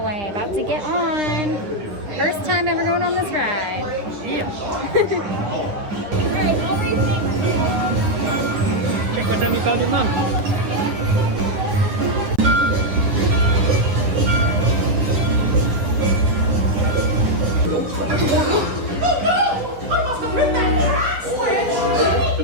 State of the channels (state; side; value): late; left; 10 ms